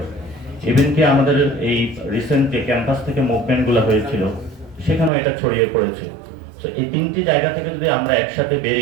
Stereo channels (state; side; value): drops out; left; at 5.1 s